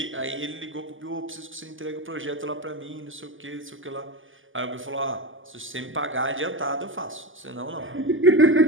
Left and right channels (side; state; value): left; late; 0.58 ms